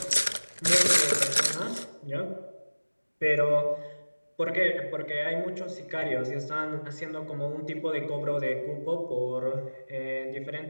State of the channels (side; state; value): both; inverted; correlation -1.00